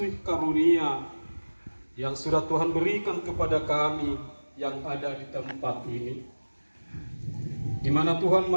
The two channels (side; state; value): both; inverted; correlation -1.00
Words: karunia yang sudah Tuhan berikan kepada kami yang ada di tempat ini, di mana Tuhan